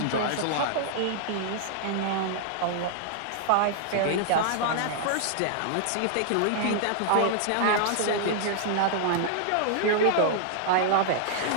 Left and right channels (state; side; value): different; both; correlation -0.01